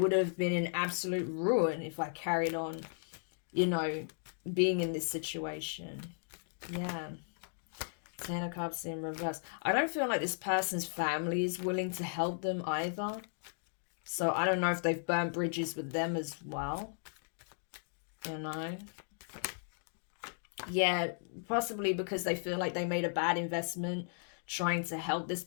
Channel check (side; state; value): right; silent; digital silence